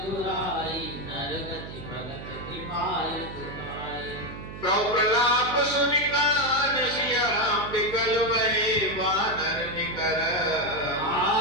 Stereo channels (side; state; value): right; noise; hum, 11 dB below the sound